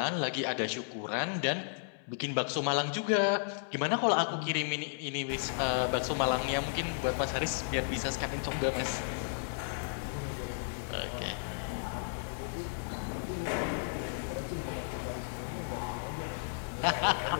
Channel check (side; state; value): right; silent; 55 dB below the other